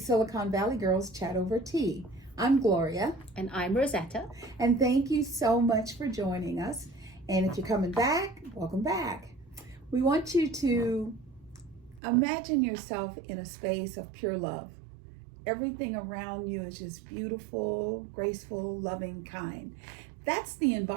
Valley Girls Chat Over Tea. I'm Gloria. And I'm Rosetta. And thank you so much for joining us. And if you're coming back, welcome back. We want you to imagine yourself in a space of pure love. Everything around you is just beautiful, graceful, loving, kind. That's the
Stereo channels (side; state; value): left; drops out; at 12.0 s